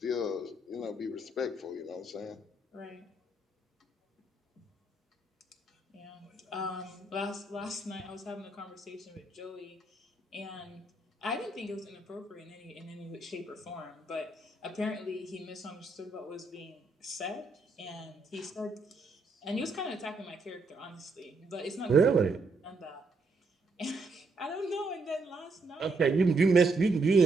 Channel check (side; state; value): left; quieter; 3.0 dB